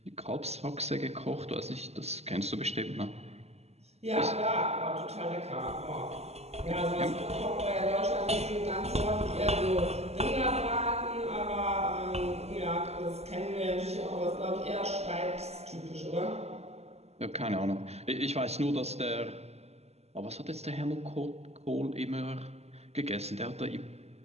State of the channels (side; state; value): left; late; 0.30 ms